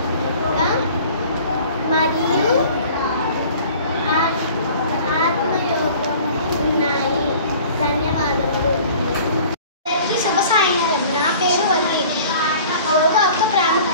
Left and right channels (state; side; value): inverted; both; correlation -0.47